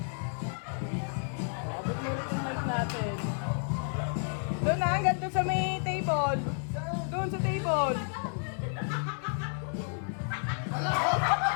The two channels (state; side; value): silent; right; 57 dB below the other